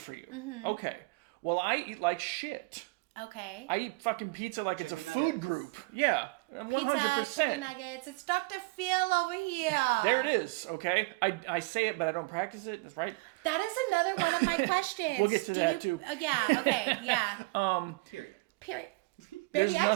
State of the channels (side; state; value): left; quieter; 25.8 dB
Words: you. Okay. Well, I eat like shit. Okay. I eat fucking pizza like Chicken it's a nuggets. food group. Yeah, 100%. Pizza, chicken nuggets. It's Dr. Phil over here. There it is, okay? I say it, but I don't practice it. That's right. That is another one of my questions. We'll get to that, too. Yeah, okay, yeah. Period. Period. There's Baby, I